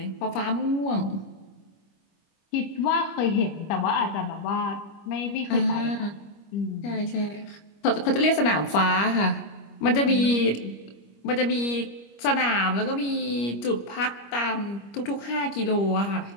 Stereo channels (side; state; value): right; late; 25 ms